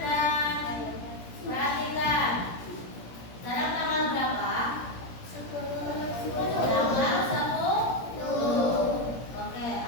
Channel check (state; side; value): late; right; 17 ms